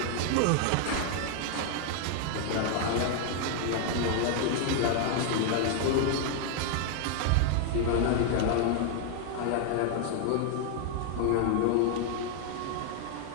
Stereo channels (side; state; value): both; different; correlation 0.00